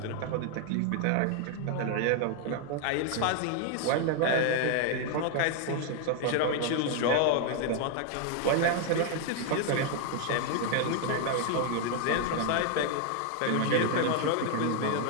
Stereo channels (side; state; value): both; different; correlation 0.00